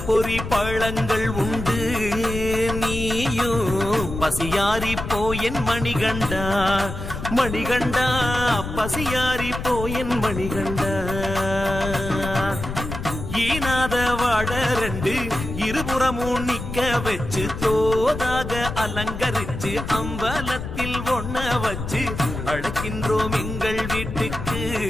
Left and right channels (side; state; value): left; noise; rumble, 7 dB below the sound